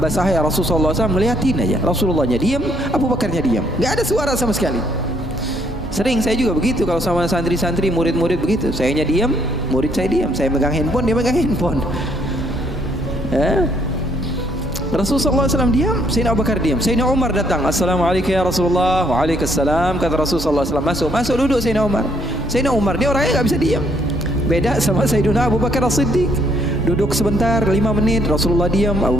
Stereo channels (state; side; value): normal; both; correlation 0.69